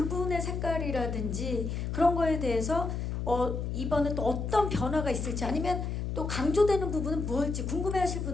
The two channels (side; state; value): left; noise; hum, 3 dB below the sound